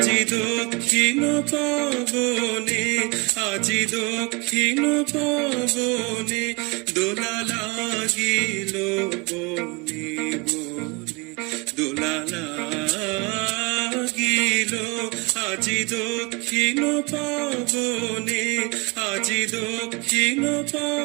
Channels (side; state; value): left; quieter; 28.2 dB